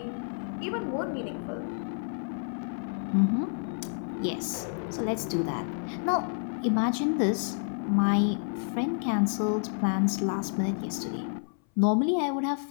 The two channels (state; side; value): silent; right; 58 dB below the other